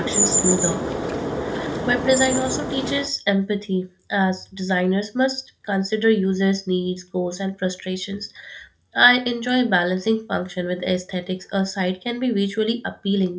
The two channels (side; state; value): both; identical; correlation 1.00